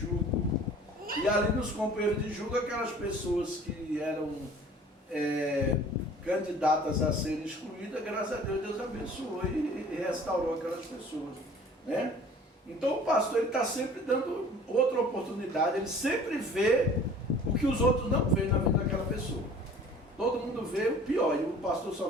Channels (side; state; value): both; normal; correlation 0.48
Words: E ali nos companheiros de julgo, aquelas pessoas que eram candidatas a serem excluídas, graças a Deus, Deus abençoou e restaurou aquelas pessoas, né? Então o pastor, ele está sempre dando outra oportunidade, ele sempre vê o que os outros não veem na vida daquela pessoa. Todo mundo vê o pior, e o pastor só